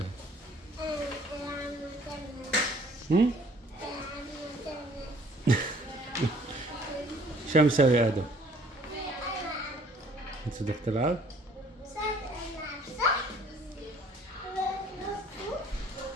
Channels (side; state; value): both; normal; correlation 0.57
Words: شو مسوي ادم؟ انت بدك تلعب؟